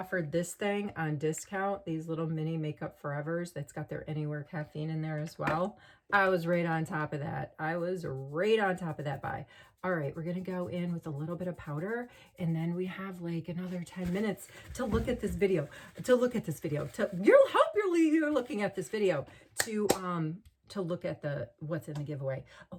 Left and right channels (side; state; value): both; identical; correlation 1.00